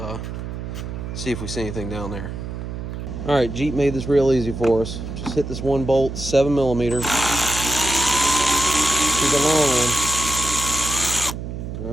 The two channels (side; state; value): right; noise; hum, 7 dB below the sound